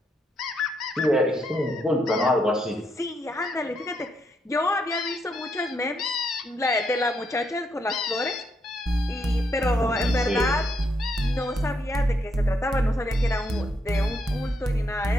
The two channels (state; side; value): normal; both; correlation 0.77